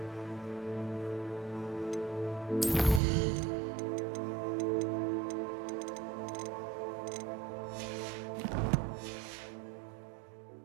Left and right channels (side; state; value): left; drops out; at 3.0 s